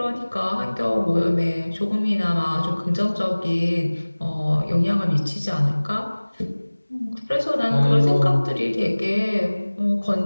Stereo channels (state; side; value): inverted; both; correlation -1.00